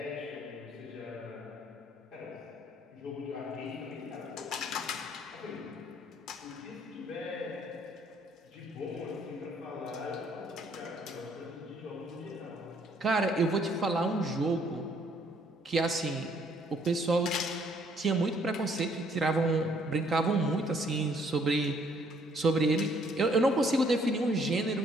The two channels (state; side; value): normal; both; correlation 0.65